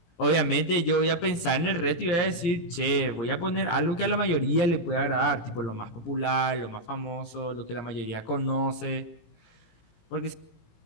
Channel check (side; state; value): right; late; 18 ms